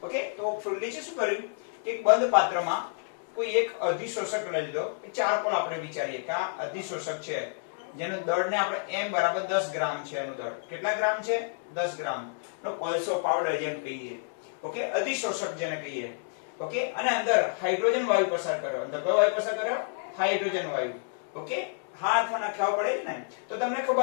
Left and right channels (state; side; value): silent; right; 57 dB below the other